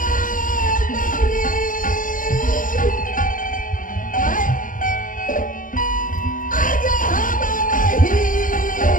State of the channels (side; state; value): right; late; 0.39 ms